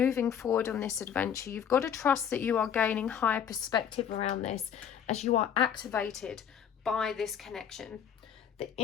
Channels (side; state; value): right; quieter; 8.3 dB